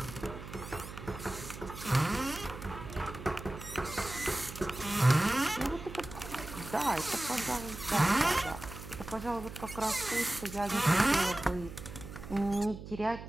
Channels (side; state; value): right; noise; hum, 12 dB below the sound